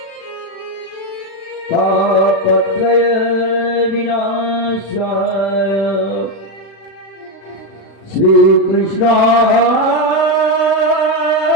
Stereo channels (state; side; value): late; right; 36 ms